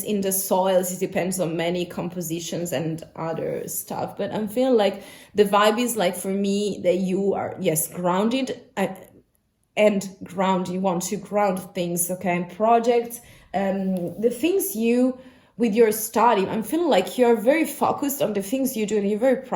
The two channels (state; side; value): identical; both; correlation 1.00